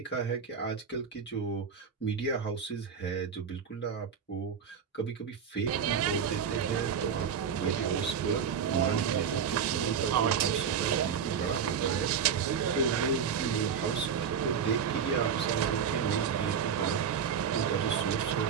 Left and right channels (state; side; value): quieter; left; 7.1 dB